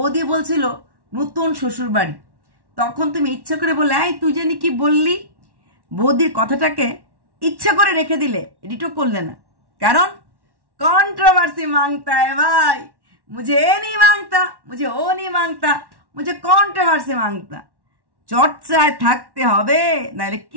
বলছিল নতুন শ্বশুর বাড়ি, তখন তুমি ইচ্ছা করে বলে এই তুই জানি কি বললি, বৌদির কথাটাকে ইচ্ছা করে রেখে দিলে, এডিটও করলে না, কারণ कंट्रोवर्सी मांगता है भाई, मुझे ये नहीं मांगता, मुझे वो नहीं मांगता, मुझे कंट्रोवर्सी मांगता। চর্চায় থাকতে হবে, নাহলে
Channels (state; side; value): late; left; 1.1 ms